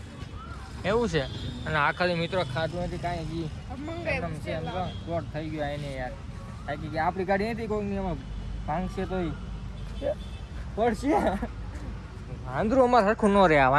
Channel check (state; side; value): identical; both; correlation 1.00